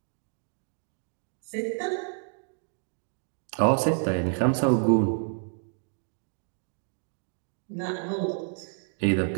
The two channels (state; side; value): silent; left; 58 dB below the other